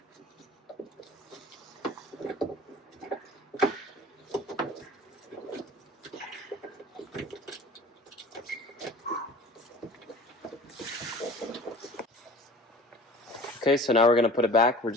Okay, so now we're going to put it back. We're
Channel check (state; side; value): normal; both; correlation 0.43